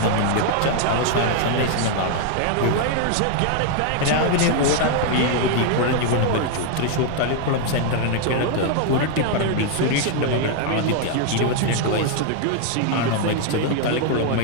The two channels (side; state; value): both; different; correlation 0.00